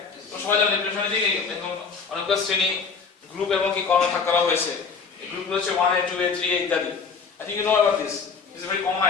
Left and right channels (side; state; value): right; quieter; 5.4 dB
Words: So সবাই জানেন নিউট্রিশনে যে অনেকগুলো শ্রেণী group এবং কি কর্ণ ভাগ করা হয়েছে। এই গ্রুপগুলো হচ্ছে 1a, 2a, 3a ইত্যাদি। I think you know about this. It's a very common